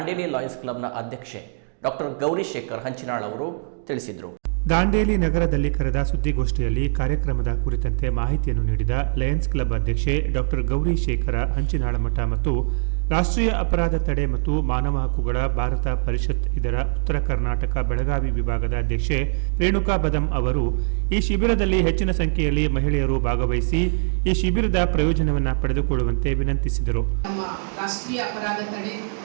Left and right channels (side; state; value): left; silent; digital silence